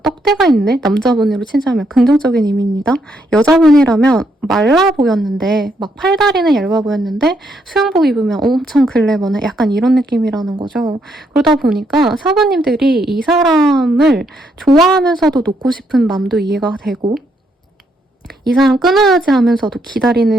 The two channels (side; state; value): both; normal; correlation 0.75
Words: 떡대가 있네. 남자분으로 친자면 긍정적인 의미입니다. 여자분이라면 말라 보였는데 막 팔다리는 얇아 보였는데 수영복 입으면 엄청 글래머네. 약간 이런 느낌이라는 거죠. 그러다 보니까 사부님들이 이 사람을 좋아하면서도 놓고 싶은 마음도 이해가 되고 이 사람 끊어야지 하면서도